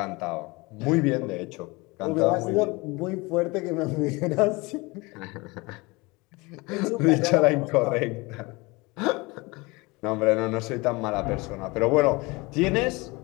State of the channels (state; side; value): quieter; right; 24.7 dB